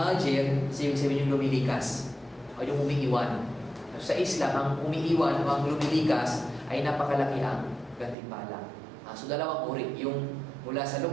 ibig sabihin yung lumilikas. O yung umiiwan. Sa Islam, ang umiiwan o ang lumilikas ay napakalaki ang gantimpala. So dalawang uri, yung mula sa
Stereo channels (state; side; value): drops out; left; at 8.2 s